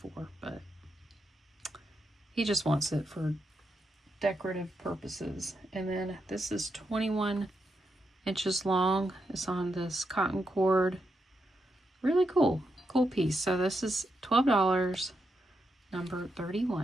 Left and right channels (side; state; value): both; normal; correlation 0.83